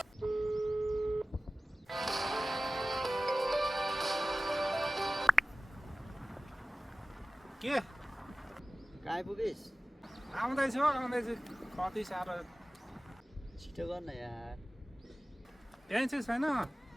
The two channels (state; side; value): normal; both; correlation 0.97